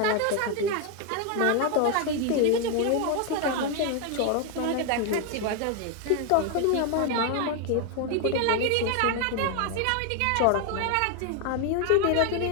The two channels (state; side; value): different; both; correlation 0.01